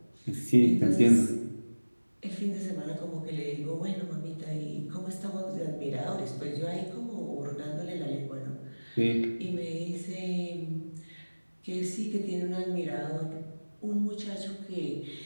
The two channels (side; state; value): both; inverted; correlation -1.00